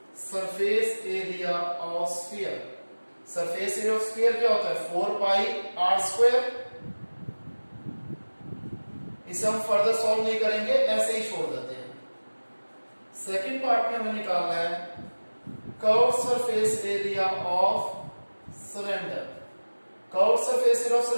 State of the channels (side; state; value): both; inverted; correlation -1.00